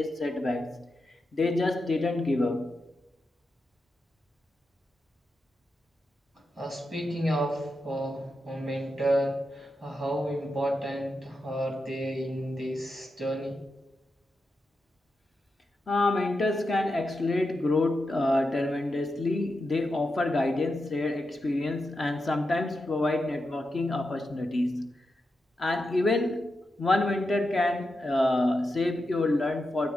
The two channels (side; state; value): both; normal; correlation 0.88